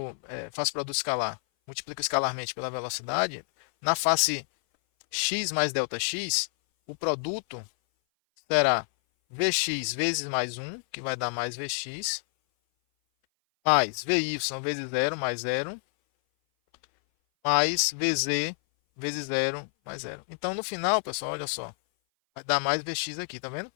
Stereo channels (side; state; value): right; silent; 57 dB below the other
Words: faço produto escalar, multiplico escalarmente pela velocidade, na face x mais delta x, o produto será Vx vezes mais 1, que vai dar mais Vx, mais Vy vezes 0 mais 0, mais Vz vezes 0 mais 0. Então, no final, pessoal, olha só.